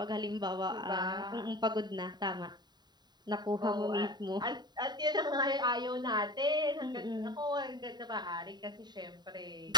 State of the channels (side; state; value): left; late; 0.20 ms